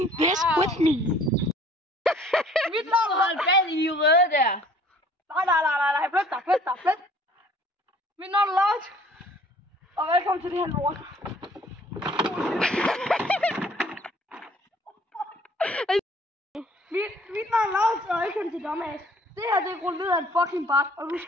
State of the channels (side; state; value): both; normal; correlation 0.55